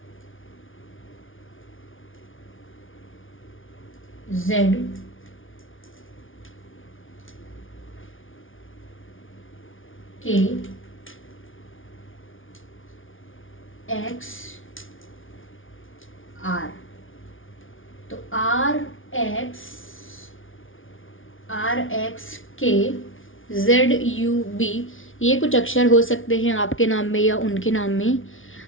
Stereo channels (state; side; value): late; right; 0.57 ms